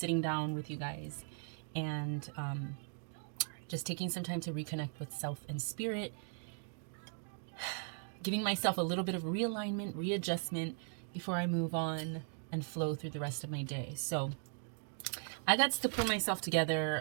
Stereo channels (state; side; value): silent; left; 52 dB below the other